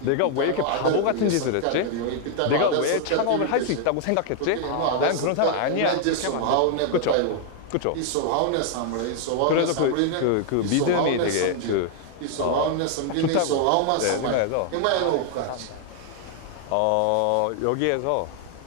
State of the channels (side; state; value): both; different; correlation 0.00